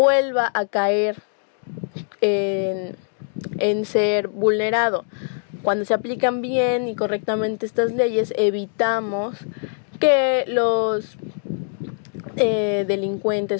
a caer en ser vulnerado. Cuando se aplican bien y correctamente estas leyes, evitamos que los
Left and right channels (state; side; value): silent; right; 64 dB below the other